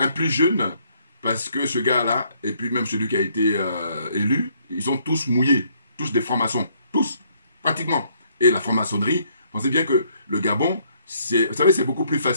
plus jeune, parce que ce gars-là, et puis même celui qui a été élu, ils sont tous mouillés, tous des francs-maçons, tous, pratiquement. Et la franc-maçonnerie, pensez bien que le Gabon, vous savez, c'est beaucoup plus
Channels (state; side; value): inverted; both; correlation -0.67